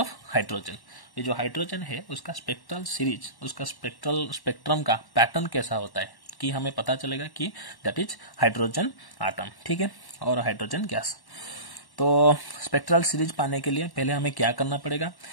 हाइड्रोजन, ये जो हाइड्रोजन है उसका स्पेक्ट्रल सीरीज, उसका स्पेक्ट्रम का पैटर्न कैसा होता है कि हमें पता चलेगा कि दैट इज हाइड्रोजन आटम. ठीक है. और हाइड्रोजन गैस. तो स्पेक्ट्रल सीरीज पाने के लिए पहले हमें क्या करना पड़ेगा?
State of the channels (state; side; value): late; right; 1.1 ms